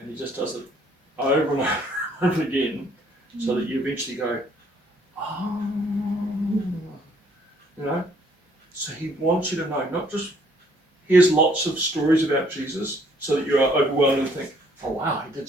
he just does it over and over again, so that you eventually go, oh, So he wants you to know, not just here's lots of stories about Jesus, so that you are overwhelmed and think, oh wow, he did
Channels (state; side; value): normal; both; correlation 0.64